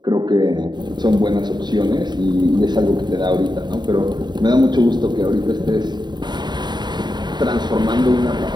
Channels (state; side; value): late; left; 0.21 ms